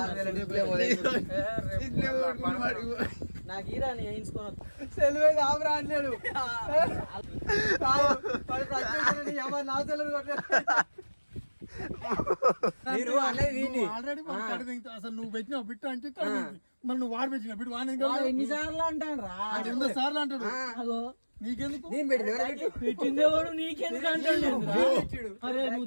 నాకు ఈరా వేయించుకోను సెలవే ఆపరా అన్నాడు నా సెలవు ఆల్రెడీ అసలు నువ్వు పెట్టినావు బిట్టు అంటే మరి నువ్వు వాడు పెట్టిన బిట్టు వాడి ఎన్నిసార్లు అంటాను రా 200 సార్లు అంటాడు నీకెందుకు పెట్టిందే వాడు నీకెందుకు అంటాడు అరే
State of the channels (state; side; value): inverted; both; correlation -1.00